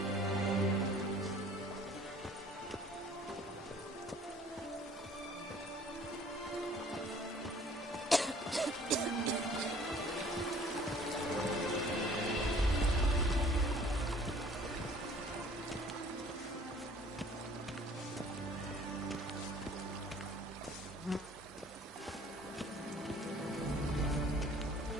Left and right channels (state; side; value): normal; both; correlation 0.53